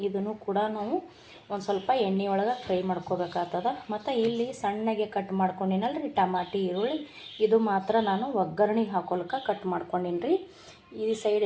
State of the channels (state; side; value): identical; both; correlation 1.00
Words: ಇದನ್ನು ಕೂಡ ನಾವು ಒಂದು ಸ್ವಲ್ಪ ಎಣ್ಣೆ ಒಳಗೆ ಫ್ರೈ ಮಾಡ್ಕೋಬೇಕಾಗ್ತದೆ. ಮತ್ತು ಇಲ್ಲಿ ಸಣ್ಣಗೆ ಕಟ್ ಮಾಡ್ಕೊಂಡಿನಲ್ರಿ ಟಮಾಟಿ, ಈರುಳ್ಳಿ, ಇದು ಮಾತ್ರ ನಾನು ಒಗ್ಗರಣೆಗೆ ಹಾಕೋಲ್ಕೆ ಕಟ್ ಮಾಡ್ಕೊಂಡೀನಿ ರೀ. ಈ ಸೈಡ್